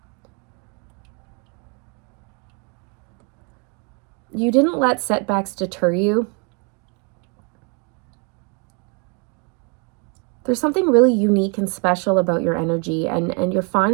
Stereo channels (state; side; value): quieter; left; 35.0 dB